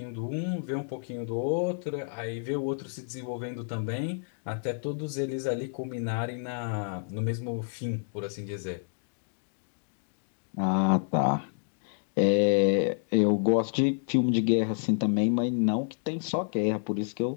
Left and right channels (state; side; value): silent; right; digital silence